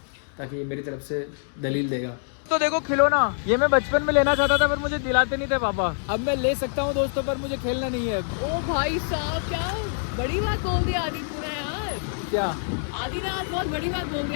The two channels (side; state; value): right; silent; digital silence